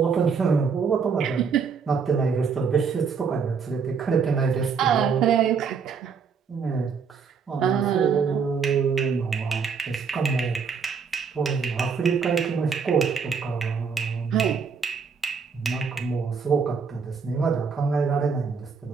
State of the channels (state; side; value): quieter; left; 5.8 dB